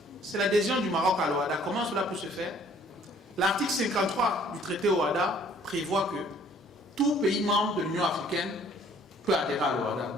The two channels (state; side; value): normal; both; correlation 0.58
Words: c'est l'adhésion du Maroc à l'OHADA. Comment cela peut se faire? L'article 53 du traité OHADA prévoit que tout pays membre de l'Union africaine peut adhérer à l'OHADA.